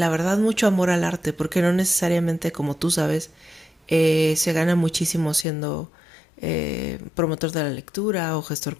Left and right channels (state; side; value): drops out; right; at 5.5 s